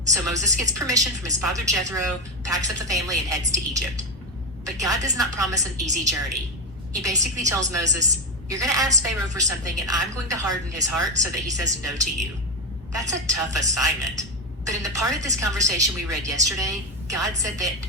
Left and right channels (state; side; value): normal; both; correlation 0.14